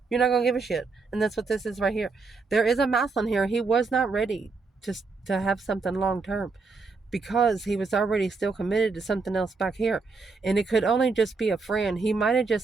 You're not going to give a shit. And that's what this is right here. There is a mouth on here. He was not ready to have something long term because he was already still committed to something else back here. And it could only just be a friend. He might have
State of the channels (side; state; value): left; quieter; 4.2 dB